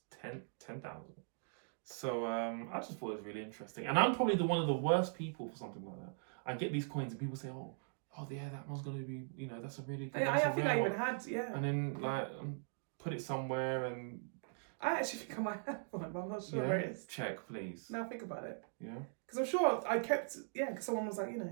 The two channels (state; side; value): silent; left; digital silence